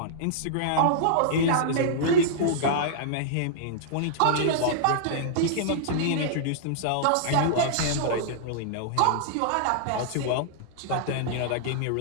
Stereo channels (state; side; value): different; both; correlation -0.02